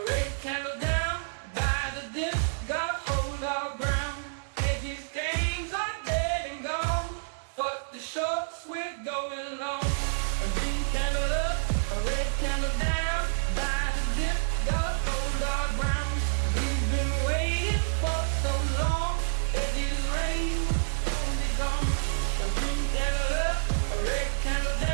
red candle down by the dip, gotta hold our ground. Hedges gains are dead and gone, but the shorts we're going long.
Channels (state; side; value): silent; left; digital silence